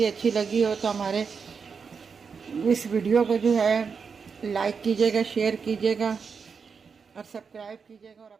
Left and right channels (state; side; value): quieter; left; 5.7 dB